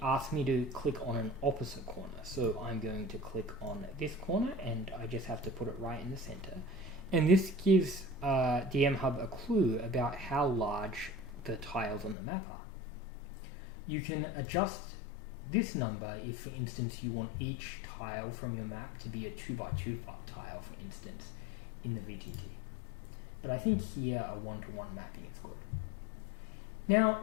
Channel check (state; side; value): drops out; right; at 12.2 s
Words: asks me to click on an opposite corner. So I'm going to click on this corner, and I just have to put it right in the center. And this gives DMHub a clue about how large the tiles on the map are. You can adjust this number if, for instance, you want each tile from your map to be a 2x2 tile, for instance, in the VTT. But I think here a 1-to-1 mapping is good. Now,